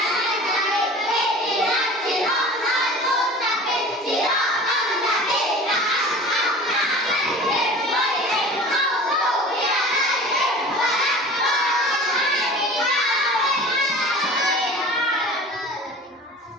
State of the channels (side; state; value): both; normal; correlation 0.40